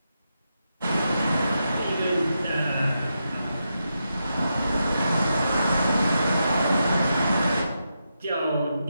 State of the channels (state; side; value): inverted; both; correlation -0.86